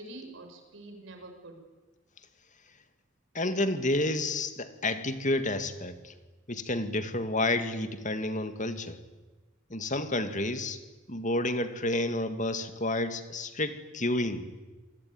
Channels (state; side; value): normal; both; correlation 0.33